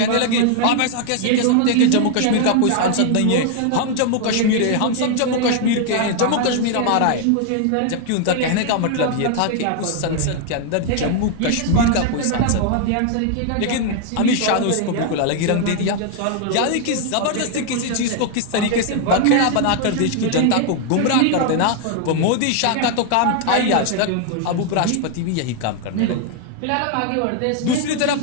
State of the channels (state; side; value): different; both; correlation 0.00